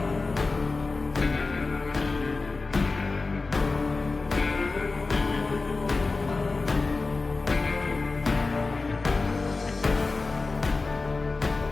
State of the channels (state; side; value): quieter; right; 3.7 dB